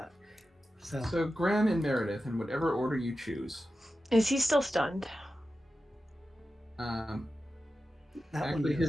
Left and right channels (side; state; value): both; normal; correlation 0.92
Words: So Graham and Meredith, in whatever order you choose. Is he still stunned? that Actually, one